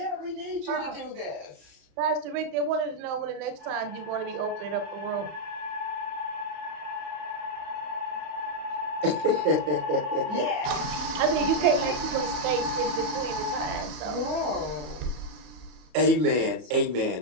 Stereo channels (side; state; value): left; late; 33 ms